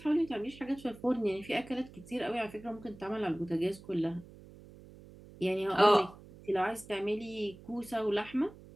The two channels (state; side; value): noise; right; hum, 20 dB below the sound